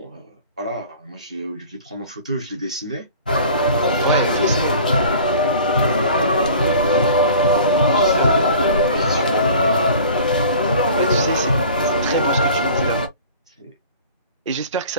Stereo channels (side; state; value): both; inverted; correlation -0.45